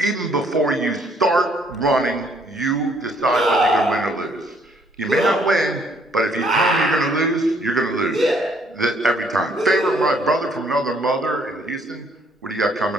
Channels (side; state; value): both; normal; correlation 0.65